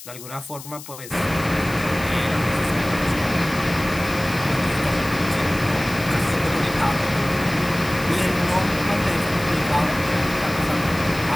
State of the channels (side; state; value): left; noise; hiss, 15 dB below the sound